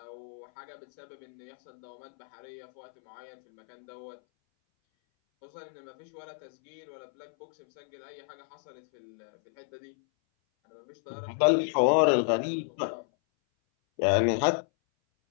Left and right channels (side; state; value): right; silent; 57 dB below the other